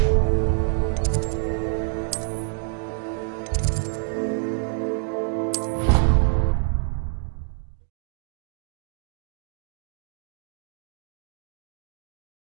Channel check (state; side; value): silent; left; 61 dB below the other